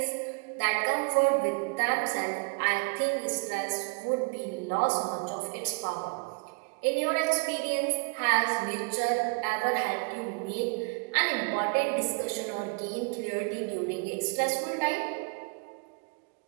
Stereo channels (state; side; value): quieter; left; 33.4 dB